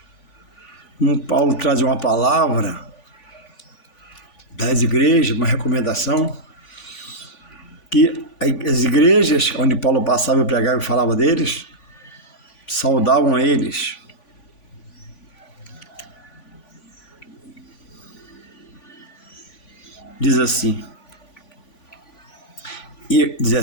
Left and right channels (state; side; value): late; right; 3.5 ms